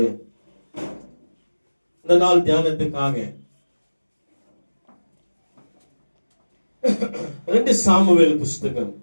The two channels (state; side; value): inverted; both; correlation -1.00